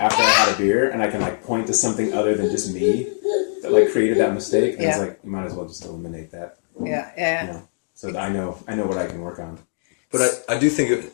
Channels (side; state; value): right; silent; digital silence